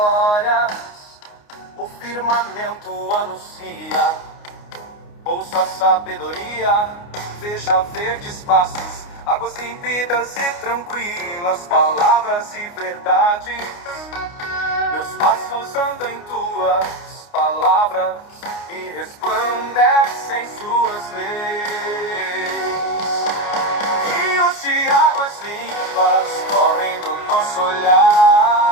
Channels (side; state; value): right; late; 29 ms